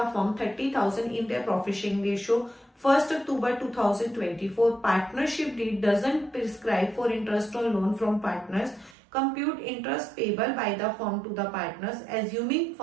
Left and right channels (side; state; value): left; drops out; at 9.0 s